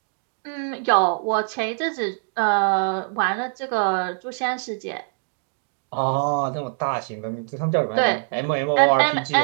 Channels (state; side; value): silent; left; 63 dB below the other